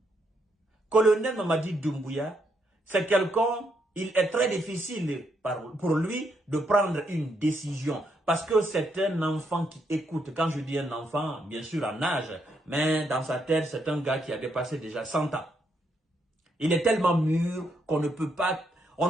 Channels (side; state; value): both; normal; correlation 0.77